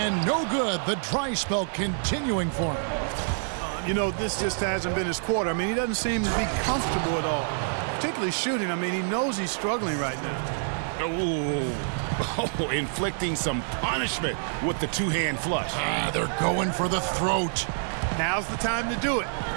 no good. The dry spell continuing for him. You know, this just hasn't been his quarter. I mean, he doesn't seem to be comfortable at all. Particularly shooting. I mean, he knows he's struggling right now. Oh, inflicting some punishment with the 2-hand flush. They're going for the throat. Now's the time to do it.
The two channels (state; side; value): silent; left; 59 dB below the other